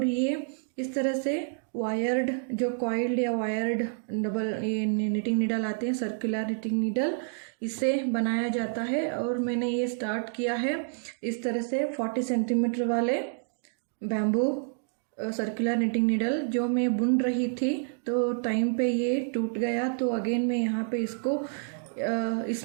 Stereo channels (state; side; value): silent; left; digital silence